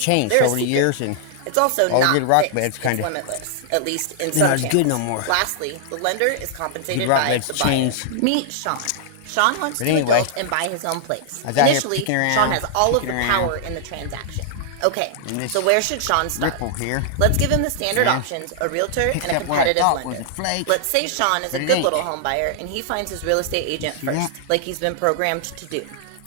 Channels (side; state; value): both; different; correlation -0.01